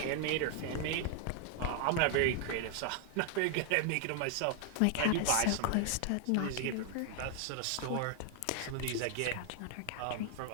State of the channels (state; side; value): different; both; correlation 0.00